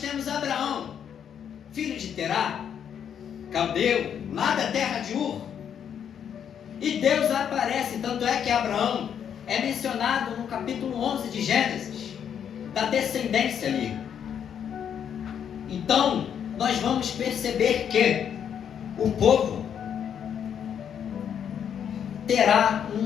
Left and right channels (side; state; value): right; quieter; 8.5 dB